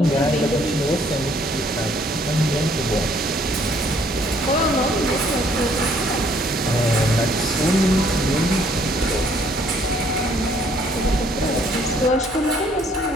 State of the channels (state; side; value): normal; both; correlation 0.63